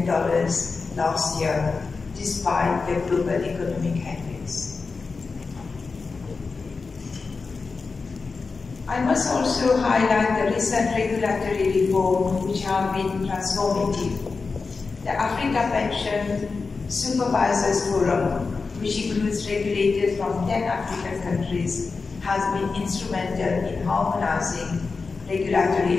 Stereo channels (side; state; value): right; quieter; 4.4 dB